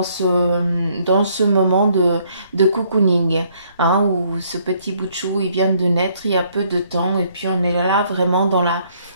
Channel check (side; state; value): both; inverted; correlation -0.67